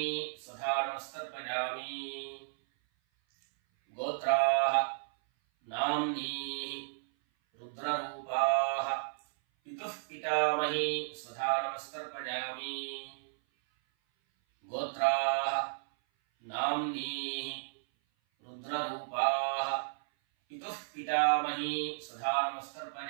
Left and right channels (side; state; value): left; silent; 55 dB below the other